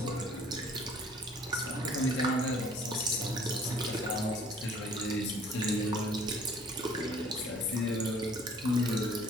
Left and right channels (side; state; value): both; normal; correlation 0.54